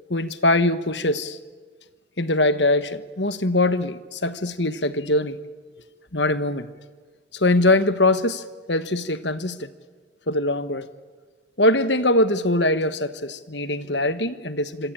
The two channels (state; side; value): normal; both; correlation -0.05